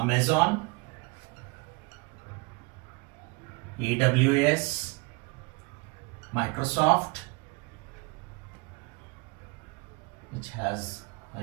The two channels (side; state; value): left; quieter; 28.0 dB